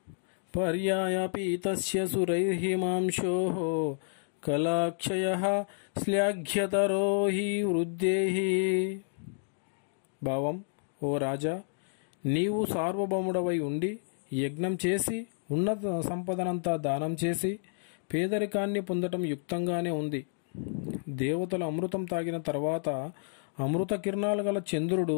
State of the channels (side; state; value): right; silent; digital silence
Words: పర్యాయపీతస్య సురైర్హిమాంశో కళాక్షయః శ్లాఘ్యతరో హి వృద్ధేః. భావం: ఓ రాజా, నీవు సార్వభౌముడవై ఉండి యజ్ఞం చేసి ఉన్నత సంపదనంతా దానం చేసి పేదరికాన్ని పొందటం యుక్తంగానే ఉంది. దేవతలు అమృతం తాగిన తర్వాత అమృత కిరణాలు గల